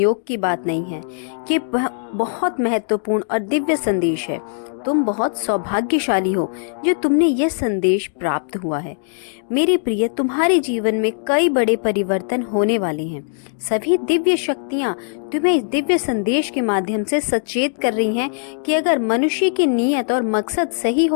की बात नहीं है। ये बहुत महत्वपूर्ण और दिव्य संदेश है। तुम बहुत सौभाग्यशाली हो जो तुमने यह संदेश प्राप्त हुआ है। मेरे प्रिय, तुम्हारे जीवन में कई बड़े परिवर्तन होने वाले हैं। सभी दिव्य शक्तियाँ तुम्हें इस दिव्य संदेश के माध्यम से सचेत कर रही हैं कि अगर मनुष्य की नीयत और मकसद सही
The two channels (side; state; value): right; silent; digital silence